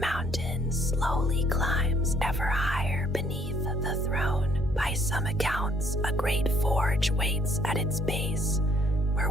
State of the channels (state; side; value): normal; both; correlation 0.64